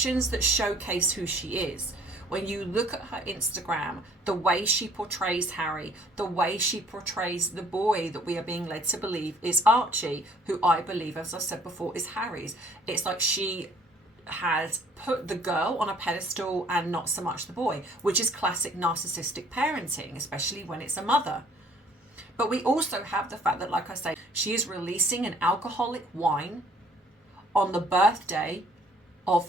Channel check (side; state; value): both; normal; correlation 0.58